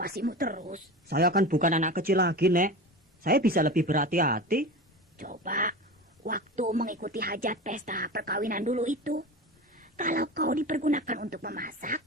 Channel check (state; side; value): normal; both; correlation 0.29